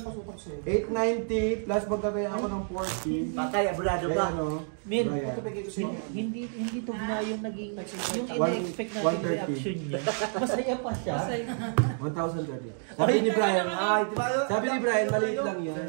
sutok sa'yo? 890 plus magkakaya ako ng 40. Patay, abulado Kaya ka. ano? Min, Ryan. hindi to na yung naging, yung One- ina-expect natin 130. reaction niya. Masaya pa siya. Masay. 1,030. Sabi ni Brian, Ay, di ba? sabi ni Brian, maliit lang yan.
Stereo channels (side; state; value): left; silent; 58 dB below the other